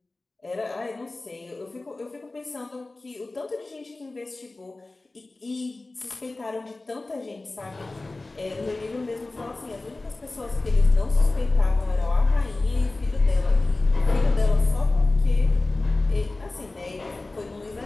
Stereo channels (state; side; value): quieter; right; 3.1 dB